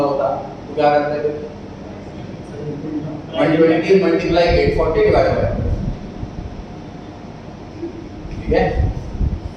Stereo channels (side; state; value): both; identical; correlation 1.00